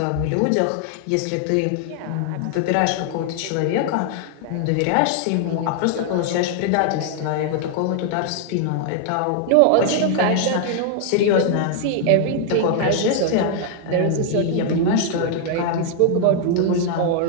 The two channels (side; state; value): both; different; correlation 0.00